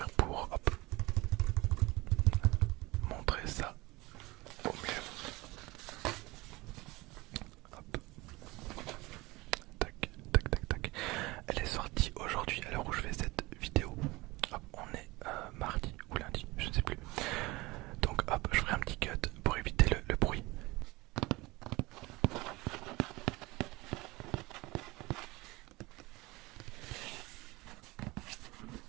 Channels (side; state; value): left; quieter; 21.8 dB